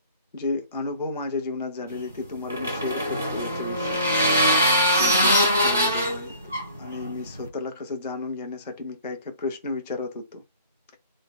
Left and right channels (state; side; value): inverted; both; correlation -0.49